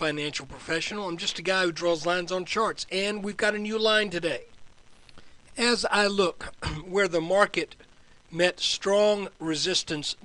professional. I'm just a guy who draws lines on charts, and we've got a new line today. As I look where the market met strong resistance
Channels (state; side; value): identical; both; correlation 1.00